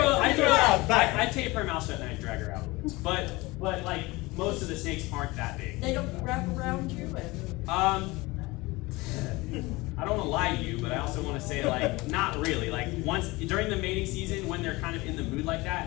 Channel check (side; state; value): right; quieter; 22.2 dB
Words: tape her mouth shut and I drag her out. But like, most of the snakes aren't that big. They don't wrap around you and. I don't want to lie to you, but I also want to say, like, not really. Like, once during the mating season, when they're kind of in the mood like